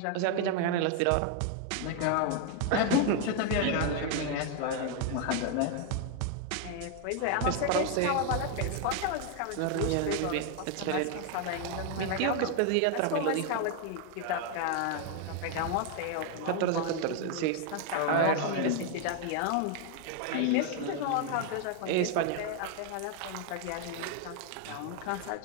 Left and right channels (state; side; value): different; both; correlation 0.01